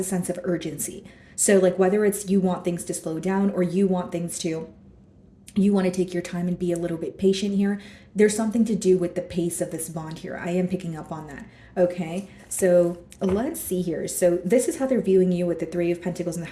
sense of urgency. So whether it's you want things to slow down, or you want to take your time and be a little bit patient here. There's something to do with the pace of this bond here. I am picking up on that. Okay, so let's see here. So this is how they're viewing you with the Three of Pentacles and the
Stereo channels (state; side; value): identical; both; correlation 1.00